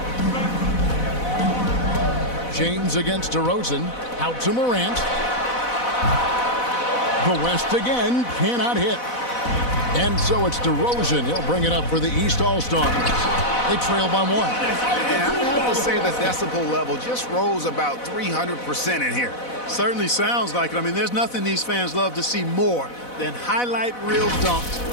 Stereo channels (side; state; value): right; late; 4.0 ms